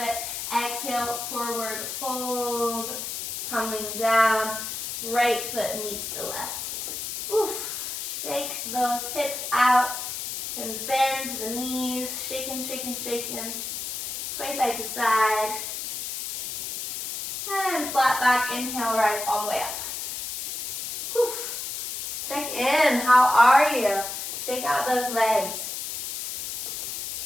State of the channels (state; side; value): noise; left; hiss, 5 dB below the sound